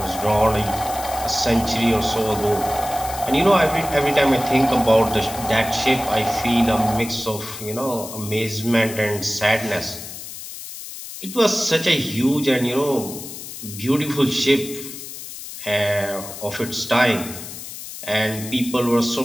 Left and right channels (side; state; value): left; noise; hiss, 11 dB below the sound